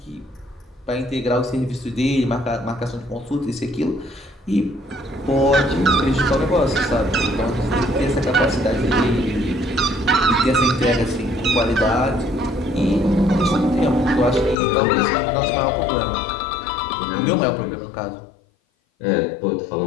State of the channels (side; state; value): right; drops out; at 14.6 s